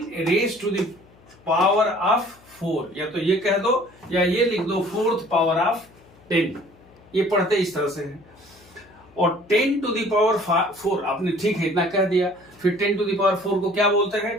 raise to the power of 4, या तो ये कह दो या ये लिख दो 4th पावर ऑफ 10, ये पढ़ते इस तरह से है। और 10 टू द पावर 4 आपने ठीक है इतना कह दिया, फिर 10 टू द पावर 4 को क्या बोलते हैं,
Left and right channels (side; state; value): left; noise; hum, 27 dB below the sound